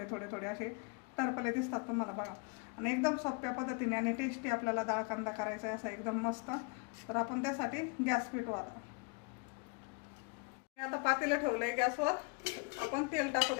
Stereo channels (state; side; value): quieter; right; 33.6 dB